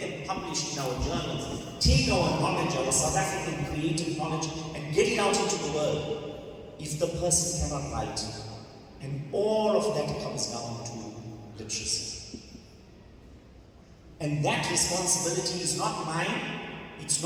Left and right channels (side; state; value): both; identical; correlation 1.00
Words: them published in our journals, take our knowledge, our South African creative knowledge, and get it out into the world, if the person cannot write? And all of that comes down to literacy. And that responsibility is not mine, it's